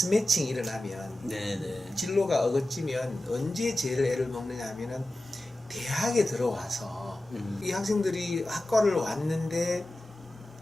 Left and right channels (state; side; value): normal; both; correlation 0.94